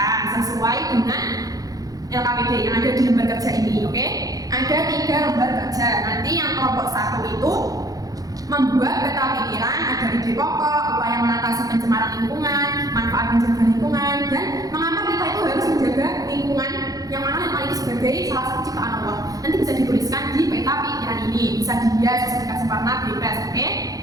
sesuai dengan LKPD yang ada di lembar kerja ini, oke? Ada 3 lembar kerja. Nanti yang kelompok 1 itu membuat peta pikiran, ada ide pokok, upaya mengatasi pencemaran lingkungan, manfaat menjaga lingkungan, dan mengapa kita itu harus menjaga lingkungan yang mana ini sebagai salah satu ciptaan Allah. Nanti bisa dituliskan di peta pikiran ini, bisa dihias, bisa dikasih warna bebas, oke?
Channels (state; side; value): late; left; 0.17 ms